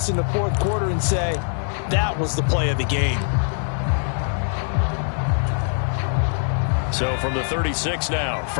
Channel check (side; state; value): right; silent; 58 dB below the other